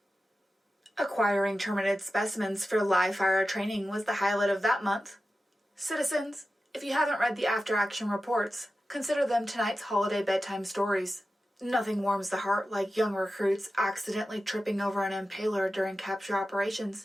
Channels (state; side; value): normal; both; correlation 0.93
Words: Acquiring terminated specimens for live fire training was the highlight of that month. Citizens, if you haven't read the after-action reports, consider them tonight's holiday bedtime stories. Nothing warms the heart like young recruits accidentally tripping over an impaler during capture